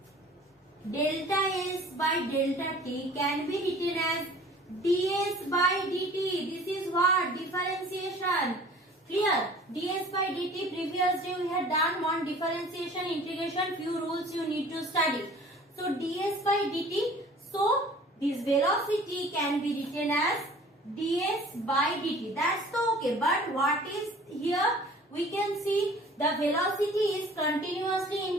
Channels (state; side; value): normal; both; correlation 0.48